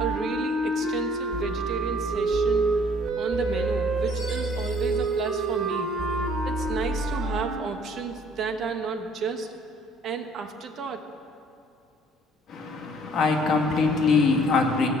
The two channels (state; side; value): normal; both; correlation 0.57